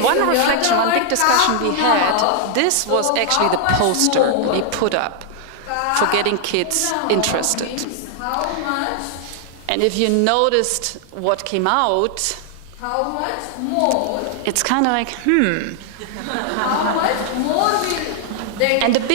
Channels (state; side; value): different; both; correlation 0.00